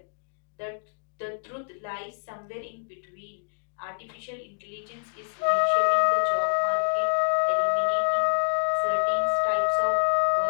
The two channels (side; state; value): right; silent; digital silence